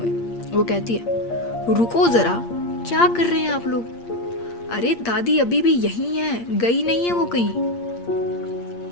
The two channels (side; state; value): right; late; 8.6 ms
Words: वो कहती है, रुको ज़रा, क्या कर रहे हैं आप लोग? अरे दादी अभी भी यहीं है, गई नहीं है वो कहीं।